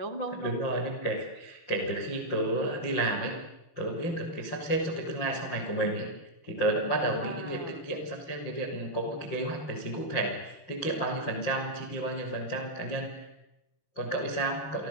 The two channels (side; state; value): right; late; 5.7 ms